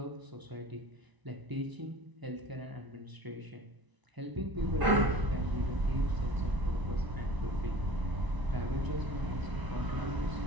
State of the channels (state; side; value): late; left; 1.0 ms